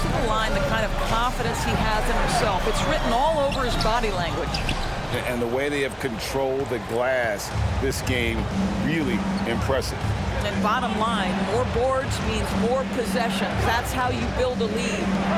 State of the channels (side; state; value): both; identical; correlation 1.00